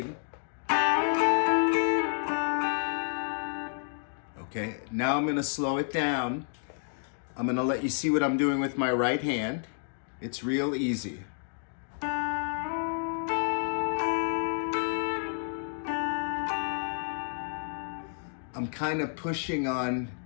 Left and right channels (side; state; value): right; silent; 58 dB below the other